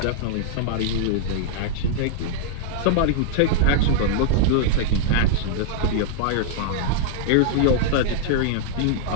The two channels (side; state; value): both; different; correlation -0.01